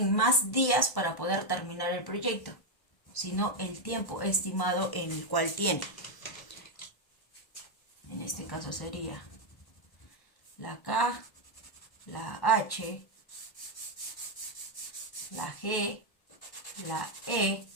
más días para poder terminar el proyecto, sino el tiempo estimado en el cual tiene. En este caso sería la K, la H, la G, la E,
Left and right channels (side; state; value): right; late; 1.1 ms